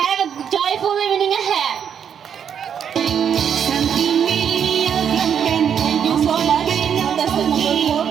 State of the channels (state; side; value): quieter; left; 8.1 dB